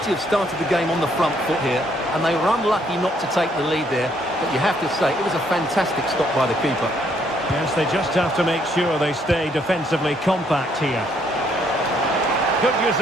have started the game on the front foot here, and they were unlucky not to take the lead there, but you have to say it was a fantastic stop by the keeper. Yes, they just have to make sure they stay defensively compact here. Good use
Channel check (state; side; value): normal; both; correlation 0.69